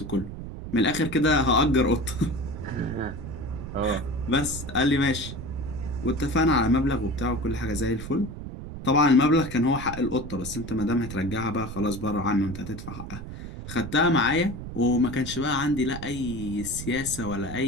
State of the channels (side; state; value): right; noise; rumble, 10 dB below the sound